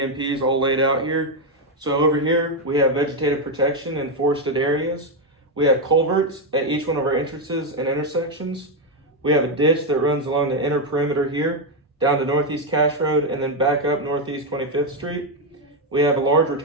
all laid out here. So over here, we have vegetative protection in forested areas. We have culverts at each one of our entrances and intersections. We have a ditch that runs along the inner perimeter here, down to Northeast Cache Road, and then back up Northeast 25th Street. We have a large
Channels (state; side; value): normal; both; correlation 0.04